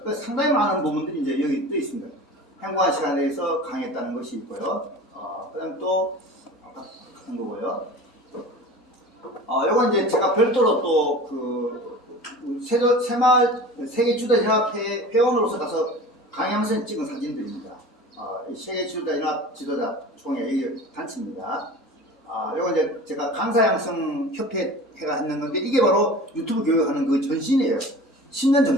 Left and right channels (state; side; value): normal; both; correlation 0.37